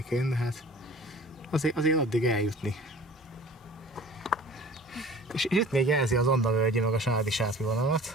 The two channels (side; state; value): both; normal; correlation 0.45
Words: de hát azért addig eljutni. És itt még jelzi az Andavölgyi meg a Sádi-Sátri